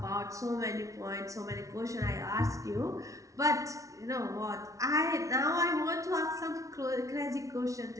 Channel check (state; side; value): late; left; 0.16 ms